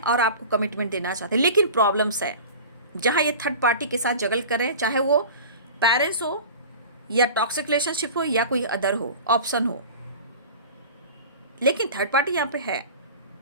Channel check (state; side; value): inverted; both; correlation -0.36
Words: और आपको कमिटमेंट देना चाहते हैं। लेकिन प्रॉब्लम्स है जहाँ ये थर्ड पार्टी के साथ जगल कर रहे हैं, चाहे वो पेरेंट्स हो या टॉक्सिक रिलेशनशिप हो या कोई अदर हो ऑप्शन हो, लेकिन थर्ड पार्टी यहाँ पे है।